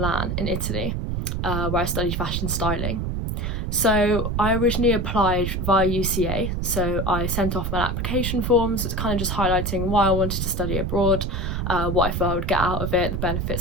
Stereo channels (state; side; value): noise; right; rumble, 1 dB below the sound